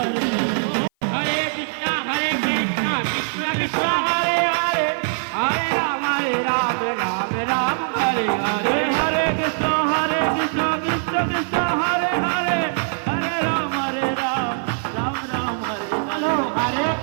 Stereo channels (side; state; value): left; silent; 55 dB below the other